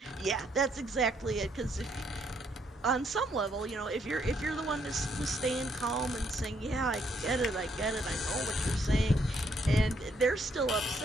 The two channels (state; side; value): normal; both; correlation 0.72